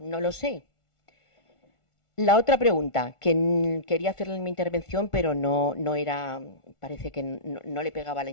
No lo sé. La otra pregunta, que quería hacerle en mi intervención, pero no era, parece que no le pegaba la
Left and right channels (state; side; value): late; right; 1.4 ms